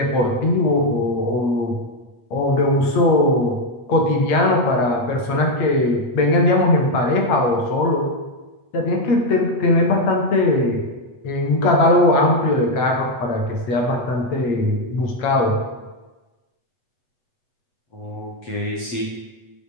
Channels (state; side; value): late; right; 8.1 ms